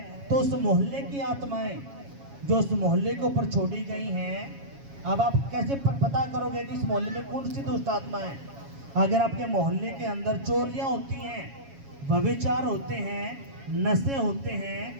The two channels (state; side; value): late; left; 7.3 ms